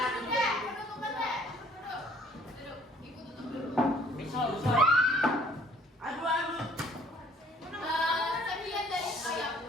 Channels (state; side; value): normal; both; correlation 0.59